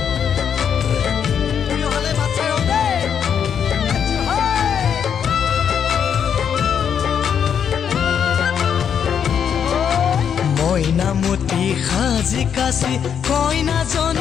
মইনামতি সাজি কাচি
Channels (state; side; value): quieter; right; 8.0 dB